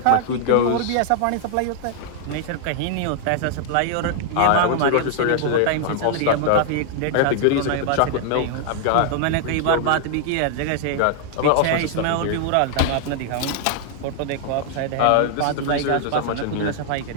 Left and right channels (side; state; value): both; different; correlation 0.00